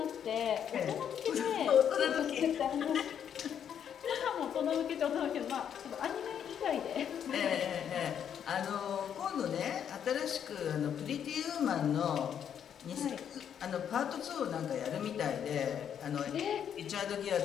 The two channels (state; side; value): quieter; right; 8.7 dB